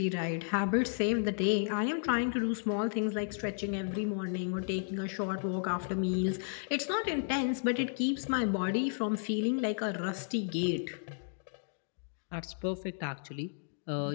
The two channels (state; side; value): silent; right; digital silence